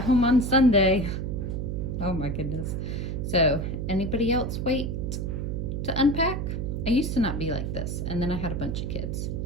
home on Sunday. Oh my goodness. So, anybody else wait to unpack? I used to not be like this, and then I had a bunch of kids.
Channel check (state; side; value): noise; right; hum, 2 dB below the sound